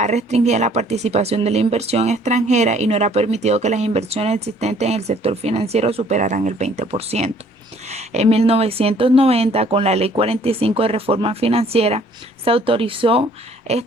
restringida la participación de la inversión extranjera y no era permitido que las inversiones existentes en el sector financiero superaran el 20%. En 1990, con la Ley 45 de Reforma Financiera, se autorizó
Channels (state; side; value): normal; both; correlation 0.59